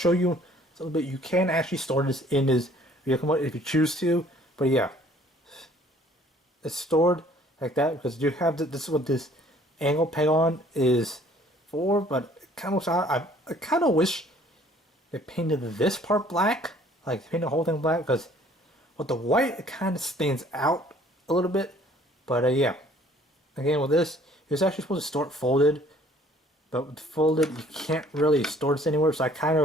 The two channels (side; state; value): both; normal; correlation 0.57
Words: you a little bit. You can actually store this in his vehicle mode if you choose to. But yeah, it's stored like that because you have this is what this angle peg on is for. But I kind of wish they painted this part black, like paint the whole thing black, because with the white it kind of stands out a little bit. But yeah, again with this, it's actually supposed to store it folded, but with folded you can't really store this anywhere. So